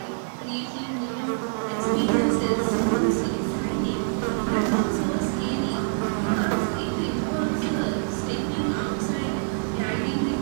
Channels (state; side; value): silent; left; digital silence